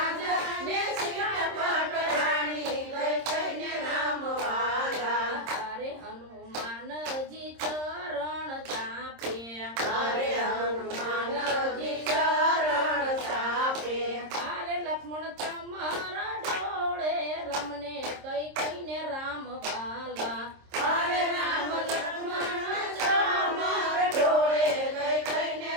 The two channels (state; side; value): late; left; 26 ms